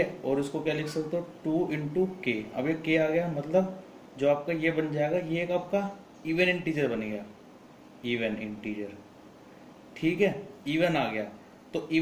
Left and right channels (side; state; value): both; identical; correlation 1.00